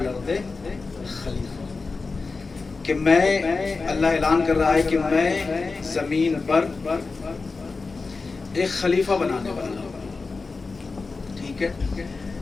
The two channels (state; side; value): quieter; right; 4.1 dB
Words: خلیفہ، کہ میں، اللہ اعلان کر رہا ہے کہ میں زمین پر ایک خلیفہ بنانے والا ہوں. ٹھیک ہے،